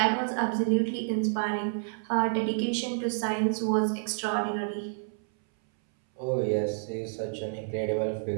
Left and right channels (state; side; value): silent; left; 59 dB below the other